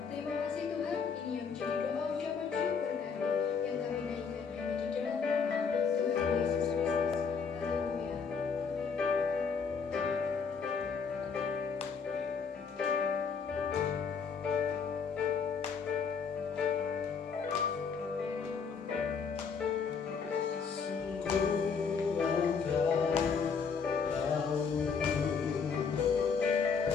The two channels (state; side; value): quieter; right; 5.8 dB